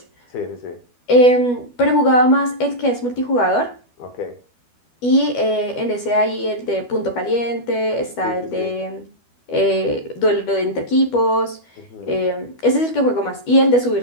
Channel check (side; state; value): right; late; 12 ms